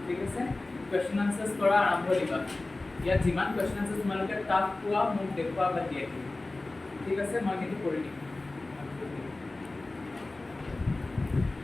ঠিক আছে, question answers কৰা আৰম্ভ দিবা। ইয়াত যিমান question answers তোমালোকে টাফ পোৱা মোক দেখুৱা বা দিয়ে, ঠিক আছে, মই কিন্তু কৰি দিম।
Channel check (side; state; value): right; quieter; 3.1 dB